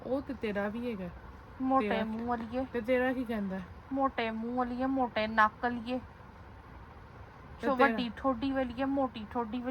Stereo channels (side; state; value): both; identical; correlation 1.00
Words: ਉਹ ਤੇ ਤੇਰਾ ਵੀ ਹੈਗਾ। ਮੋਟੇ ਮੂੰਹ ਵਾਲੀਏ, ਤੇ ਤੇਰਾ ਕੀ ਕਹਿੰਦਾ? ਮੋਟੇ ਮੂੰਹ ਵਾਲੀਏ, ਮੋਟੇ ਨੱਕ ਵਾਲੀਏ, ਵੱਡੀ ਠੋਡੀ ਵਾਲੀਏ, ਮੋਟੀ ਠੋਡੀ